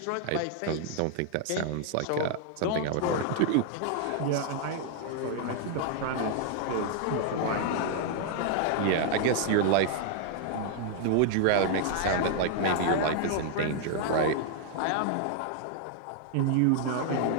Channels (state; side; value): different; both; correlation 0.00